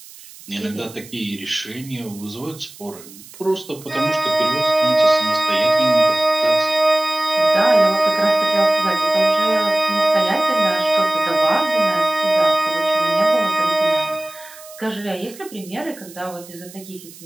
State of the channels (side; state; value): right; noise; hiss, 19 dB below the sound